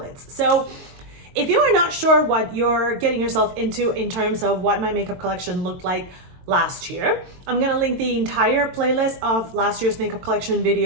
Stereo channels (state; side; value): late; left; 22 ms